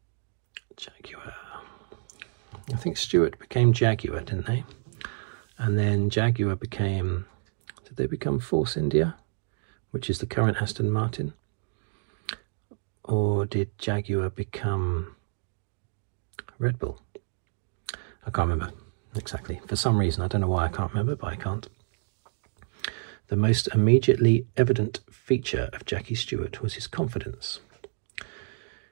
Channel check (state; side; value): silent; left; digital silence